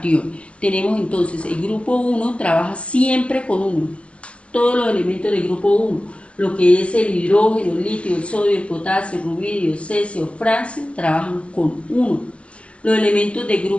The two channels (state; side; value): late; right; 0.061 ms